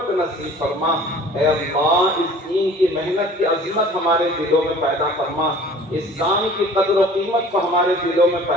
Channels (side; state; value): both; normal; correlation 0.47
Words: نصیب فرما، اے اللہ اس دین کی محنت کی عظمت ہمارے دلوں میں پیدا فرما، اس کام کی قدر و قیمت کو ہمارے دلوں میں